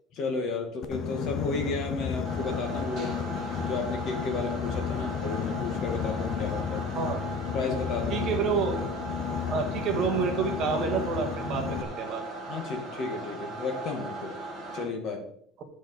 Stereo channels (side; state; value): both; normal; correlation 0.38